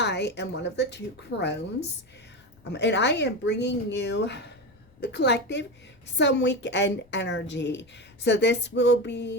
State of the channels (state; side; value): noise; left; rumble, 29 dB below the sound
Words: am one of the two crones, and I am bringing you the collective some weekend energy. So this will